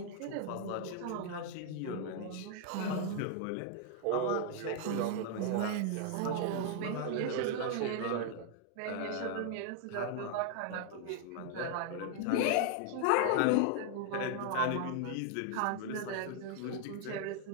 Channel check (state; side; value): different; both; correlation 0.00